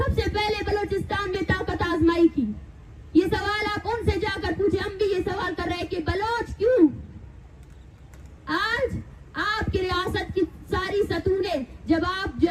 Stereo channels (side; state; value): both; identical; correlation 1.00